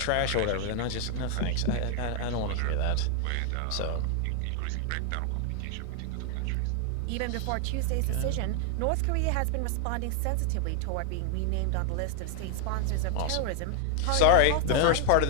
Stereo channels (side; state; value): both; different; correlation 0.00